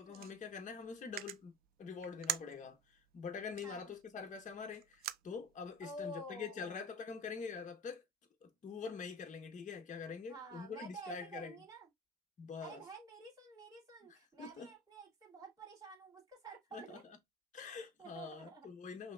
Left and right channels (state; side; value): normal; both; correlation 0.35